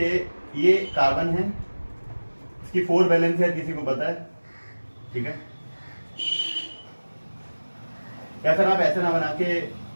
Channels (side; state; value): both; inverted; correlation -1.00